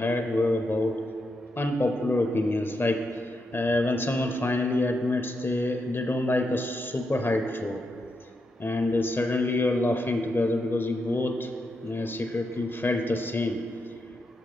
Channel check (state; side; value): normal; both; correlation 0.83